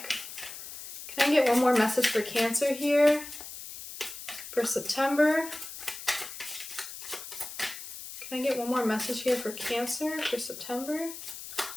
Can I get one more message for Cancer here for September? Can I get one more message here for Cancer for September?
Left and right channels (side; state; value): left; noise; hiss, 11 dB below the sound